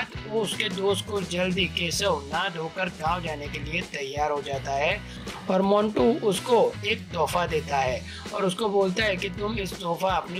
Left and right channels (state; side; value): identical; both; correlation 1.00